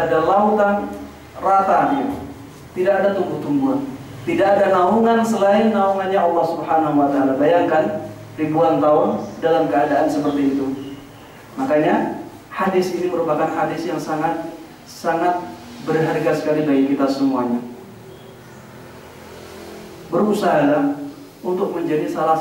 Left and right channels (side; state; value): both; identical; correlation 1.00